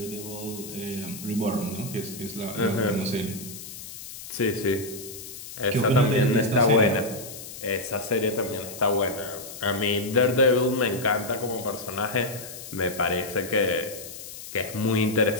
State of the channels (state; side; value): noise; left; hiss, 12 dB below the sound